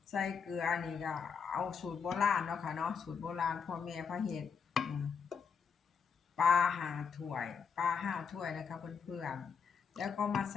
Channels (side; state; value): right; quieter; 6.3 dB